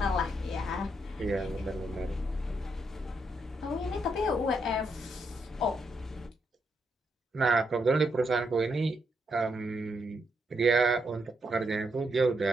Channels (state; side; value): normal; both; correlation 0.79